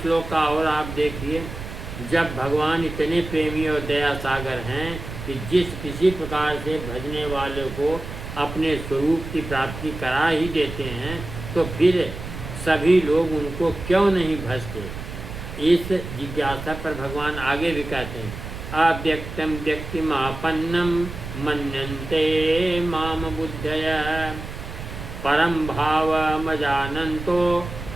श्लोक का और आप देखिए, जब भगवान इतने प्रेमी और दया सागर हैं कि जिस किसी प्रकार से भजने वाले को अपने स्वरूप की प्राप्ति करा ही देते हैं, तो फिर सभी लोग उनको क्यों नहीं भजते? इस जिज्ञासा पर भगवान आगे भी कहते हैं, अव्यक्तम व्यक्तिमापन्नम मन्यन्ते माम बुद्धय, परम भावमजानन्तो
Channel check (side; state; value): right; noise; rumble, 9 dB below the sound